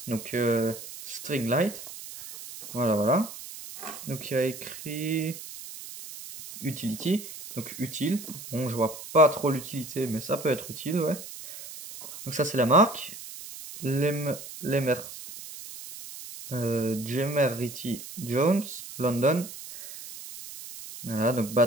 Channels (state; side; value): noise; right; hiss, 13 dB below the sound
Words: donc string light. Voilà, voilà. Donc il y a écrit utility, donc utile. Bon, je vois pas trop l'utilité, mais ça peut être utile, ouais. Donc ça c'est la marque. Lemer, Gemerity Jones, London. Voilà, donc